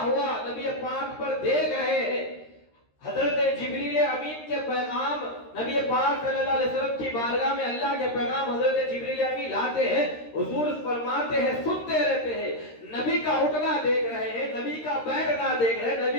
ہوا نبی پاک پر دیکھ رہے ہیں. حضرت جبریل امین کے پیغام نبی پاک صلی اللہ علیہ وسلم کی بارگاہ میں اللہ کے پیغام حضرت جبریل امین لاتے ہیں، حضور فرماتے ہیں، سنتے رہتے ہیں، نبی کا اٹھنا دیکھ رہے ہیں، نبی کا بیٹھنا دیکھ رہے ہیں،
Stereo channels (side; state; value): right; late; 13 ms